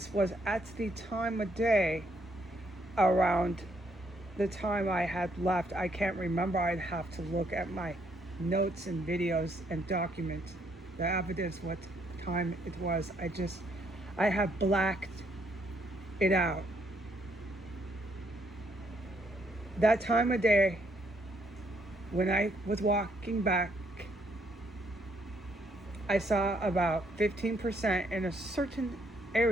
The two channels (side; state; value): both; normal; correlation 0.71